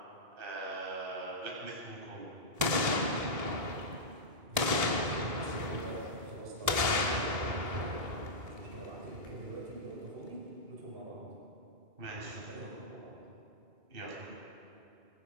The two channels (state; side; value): late; left; 1.8 ms